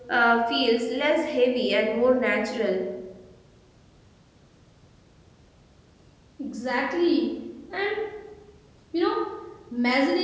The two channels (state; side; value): identical; both; correlation 1.00